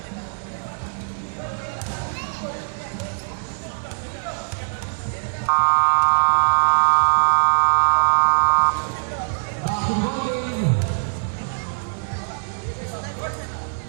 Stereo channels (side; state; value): left; silent; 64 dB below the other